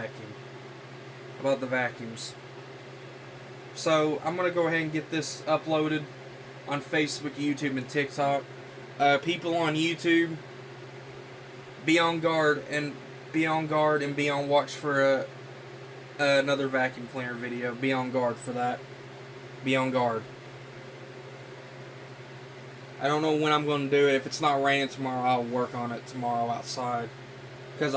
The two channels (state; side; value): identical; both; correlation 1.00